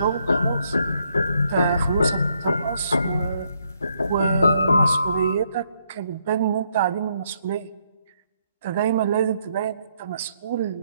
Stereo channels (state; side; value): inverted; both; correlation -0.73